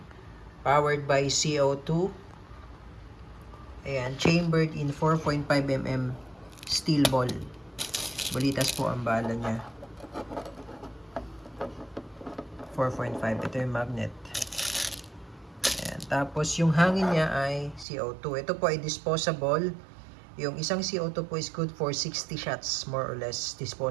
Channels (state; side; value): drops out; left; at 17.9 s